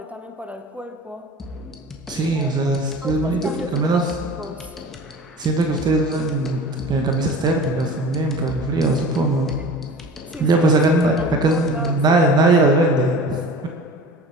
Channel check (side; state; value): both; normal; correlation 0.39